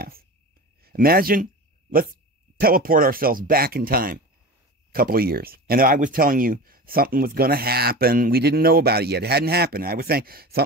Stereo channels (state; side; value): normal; both; correlation 0.31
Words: Imagine, let's teleport ourselves back in time a couple of years. And I was telling you something was going to happen. We didn't know about it yet. It hadn't happened. I was saying